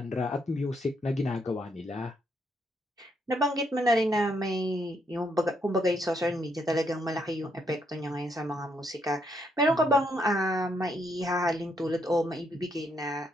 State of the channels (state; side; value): normal; both; correlation 0.75